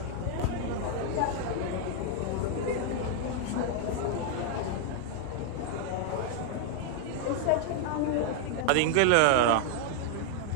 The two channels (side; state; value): both; different; correlation 0.00